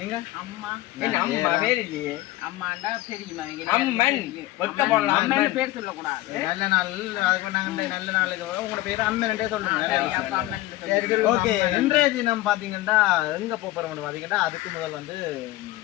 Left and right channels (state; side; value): quieter; right; 17.1 dB